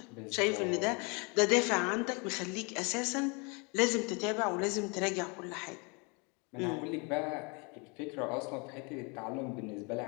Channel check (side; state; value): right; quieter; 31.4 dB